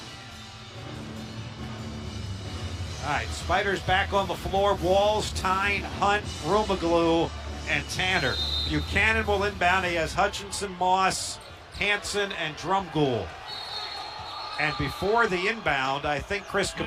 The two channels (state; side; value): identical; both; correlation 1.00